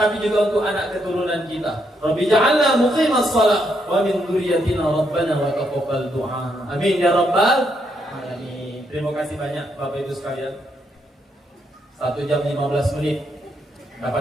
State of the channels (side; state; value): both; normal; correlation 0.77